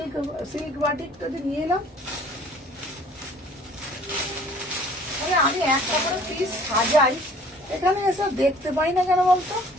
সিল্ক বাটিকটা যে নিয়ে এলাম, আমি একটা করে পিস সাজাই, এখানে এসব দেখতে পাই না কেন বলতো?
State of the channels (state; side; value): normal; both; correlation 0.53